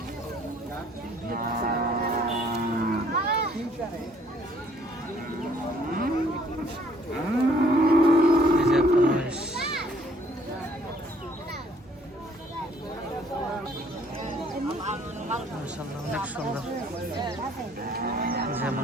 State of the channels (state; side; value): normal; both; correlation 0.62